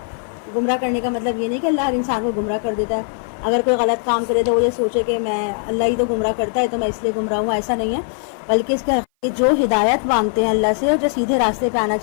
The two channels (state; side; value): silent; right; 58 dB below the other